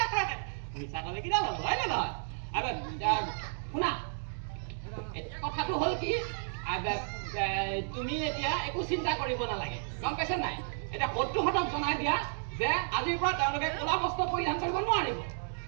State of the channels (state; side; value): silent; left; digital silence